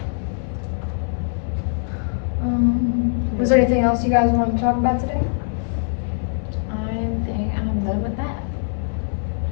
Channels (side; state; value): right; silent; 58 dB below the other